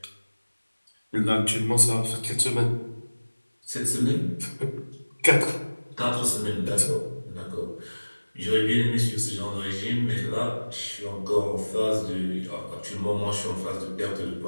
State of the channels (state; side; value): inverted; both; correlation -1.00